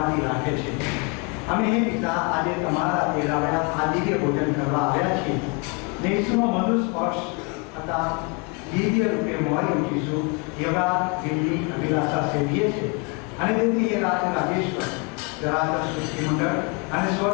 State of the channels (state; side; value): quieter; right; 32.8 dB